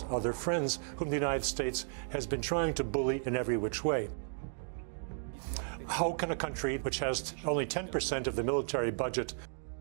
other friends, whom the United States has been trying to bully in every which way. How can a country which has only 10% of the military budget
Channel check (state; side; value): silent; left; digital silence